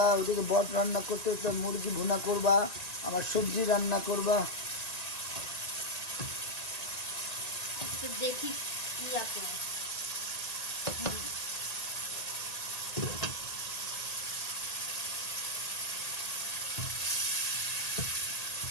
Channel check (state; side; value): late; right; 1.9 ms